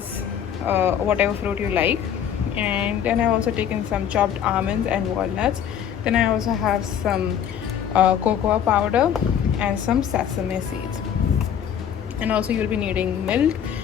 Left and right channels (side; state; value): right; quieter; 9.0 dB